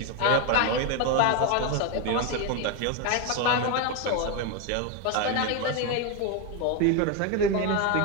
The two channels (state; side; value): different; both; correlation 0.02